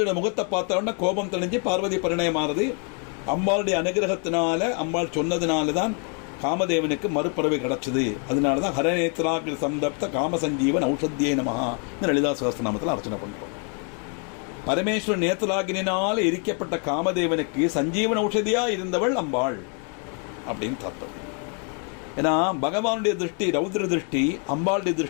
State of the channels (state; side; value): quieter; right; 39.9 dB